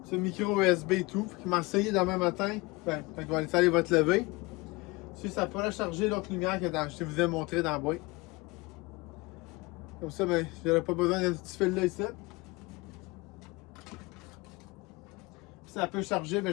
C'est micro USB et tout. Il m'a essayé demain matin. Ben, quand il va aller va te lever. Si ça pourrait charger l'autre lumière que je vous ai montré dans la boîte. Comme ça, ben, j'aurais pas besoin de ce petit fil là ici. Si ça peut charger, mais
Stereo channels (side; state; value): right; quieter; 23.7 dB